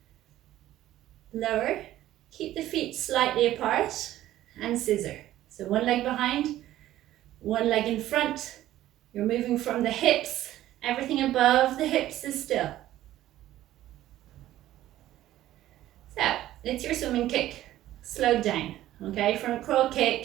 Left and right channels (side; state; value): left; quieter; 14.0 dB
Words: Lower. Keep the feet slightly apart and scissor. So one leg behind, one leg in front. You're moving from the hips. Everything above the hips is still. So it's your swimming kick, slowed down. Okay, front crawl